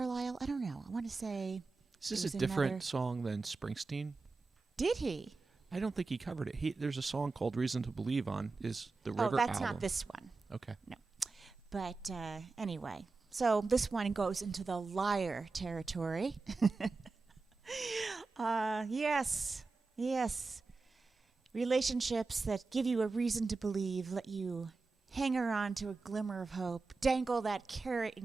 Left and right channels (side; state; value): left; quieter; 3.9 dB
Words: I don't know. I want to say. Is this a different song than Springsteen? Did he? I don't think he covered it. There's a song called Reason to Believe on the River album. Oh, that's not this one. Okay. No. But anyway, so this one goes into the liar territory. Yes. Relationships that give you a reason to believe, let you hang on to a glimmer of hope, dangle that carrot in